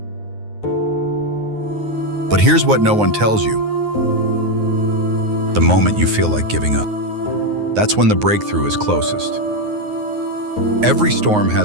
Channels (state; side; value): late; left; 9.5 ms